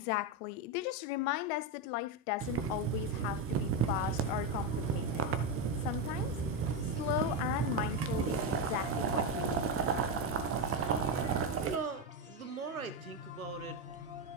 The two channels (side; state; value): both; normal; correlation 0.09